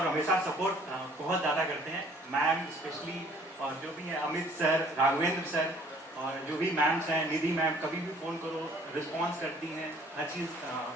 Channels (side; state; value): both; normal; correlation 0.56